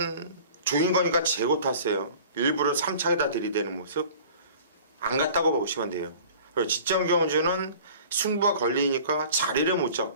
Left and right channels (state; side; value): inverted; both; correlation -0.45